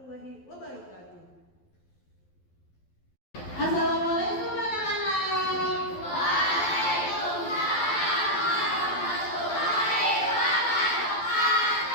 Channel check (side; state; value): right; late; 11 ms